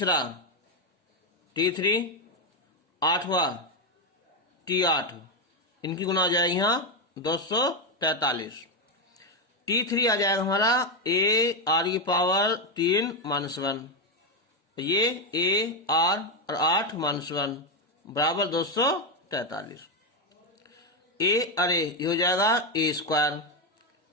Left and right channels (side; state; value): both; normal; correlation 0.07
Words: T3 8वां T8 इनकी गुना आ जाएगी यहाँ 243। T3 आ जाएगा हमारा a r की पावर 3 माइनस 1, ये a r और 8 माइनस 1 बराबर 243। a अरे ये हो जाएगा a स्क्वायर,